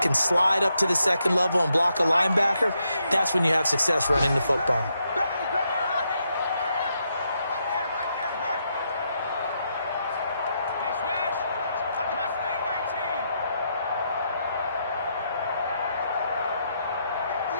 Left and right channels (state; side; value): inverted; both; correlation -0.80